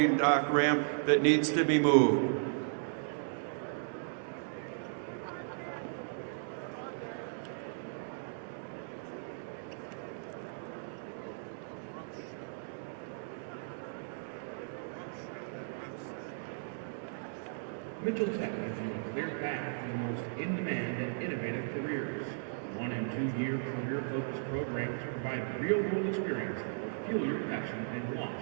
dock ramp that needs to be moved. Mitchell Tech gives you a clear path to the most in-demand and innovative careers. 1- and 2-year career-focused programs provide real-world experience that will fuel your passion and launch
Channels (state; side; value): silent; left; digital silence